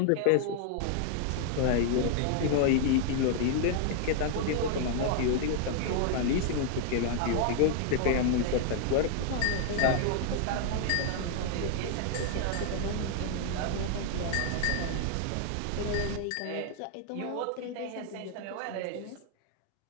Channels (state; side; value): different; both; correlation 0.00